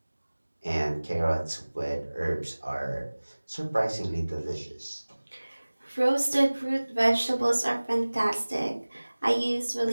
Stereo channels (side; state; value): both; inverted; correlation -1.00